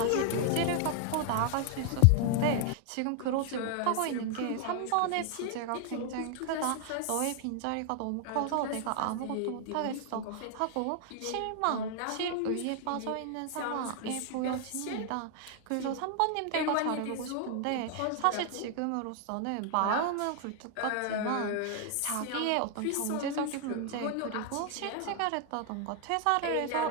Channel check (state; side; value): different; both; correlation 0.00